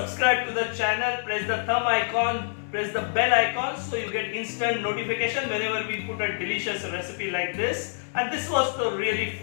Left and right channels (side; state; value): right; silent; digital silence